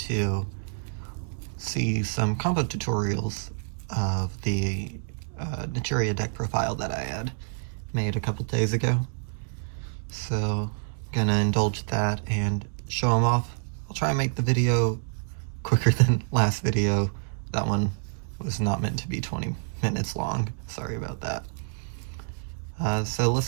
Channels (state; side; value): silent; left; 60 dB below the other